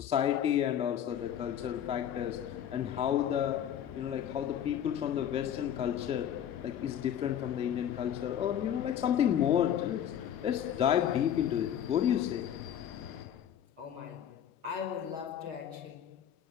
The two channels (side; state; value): right; quieter; 9.8 dB